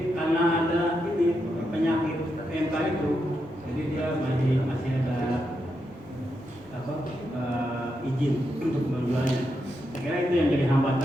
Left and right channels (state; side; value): noise; right; rumble, 28 dB below the sound